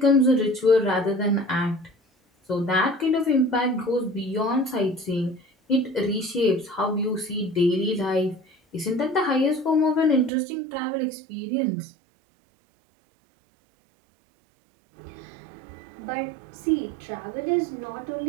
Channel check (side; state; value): left; drops out; at 10.3 s